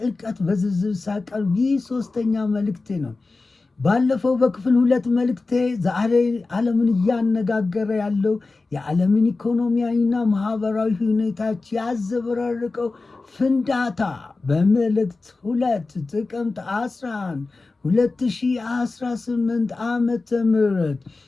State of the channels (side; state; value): right; quieter; 3.6 dB